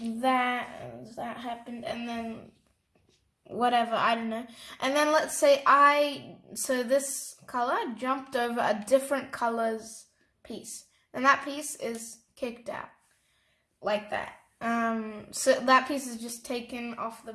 that happened, and then whatever, I don't know, and then let's say so this color jumped over a different color's piece, and that piece is kicked out like that. So that piece is just taken off the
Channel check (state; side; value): identical; both; correlation 1.00